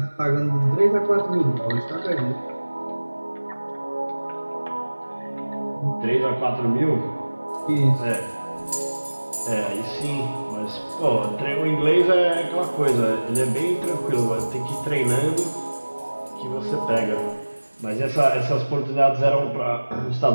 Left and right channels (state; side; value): inverted; both; correlation -1.00